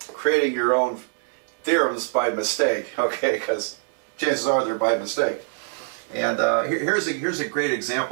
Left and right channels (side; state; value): left; silent; digital silence